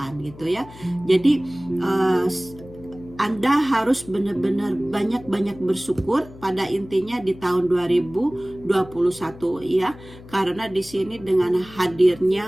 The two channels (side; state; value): left; noise; hum, 19 dB below the sound